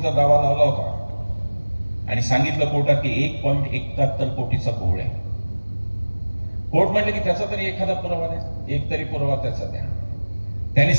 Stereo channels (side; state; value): both; inverted; correlation -1.00